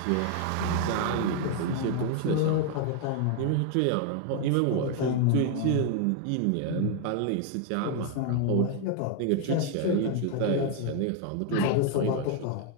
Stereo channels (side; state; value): both; different; correlation 0.00